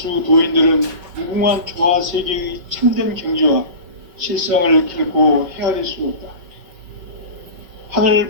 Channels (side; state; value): left; late; 5.3 ms